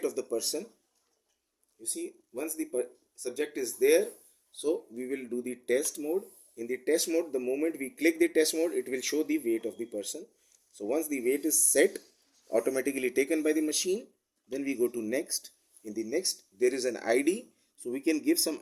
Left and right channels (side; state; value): both; identical; correlation 1.00